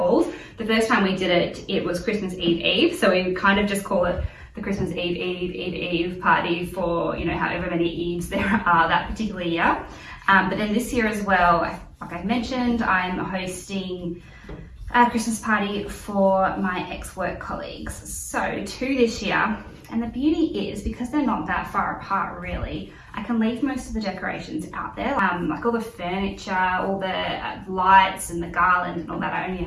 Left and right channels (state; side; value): identical; both; correlation 1.00